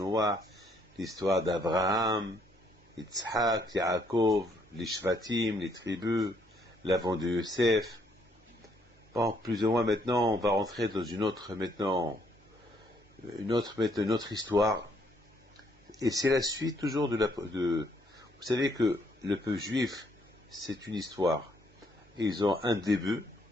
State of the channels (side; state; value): both; normal; correlation 0.69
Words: l'histoire d'Abraham, Yitzhak, Yaakov, les Shvatim, les tribus, l'avant de Yosef. Bon, plus ou moins maintenant, on va rentrer dans une autre histoire. Et c'est la suite toujours vous savez que le peuple juif, c'est une histoire. Ils ont un début,